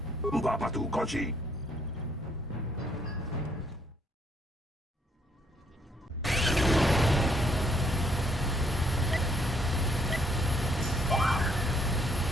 Uba patu konchi.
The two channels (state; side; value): normal; both; correlation 0.69